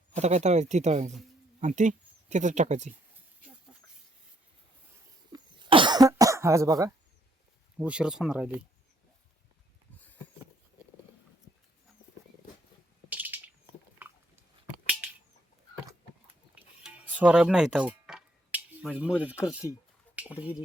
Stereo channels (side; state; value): both; normal; correlation 0.70